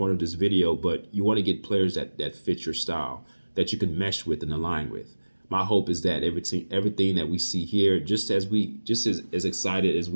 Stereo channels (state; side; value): inverted; both; correlation -1.00